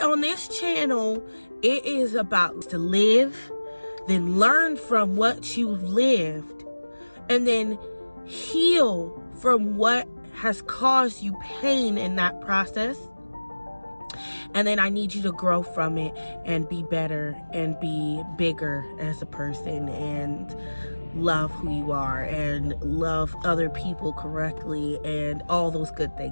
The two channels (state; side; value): inverted; both; correlation -1.00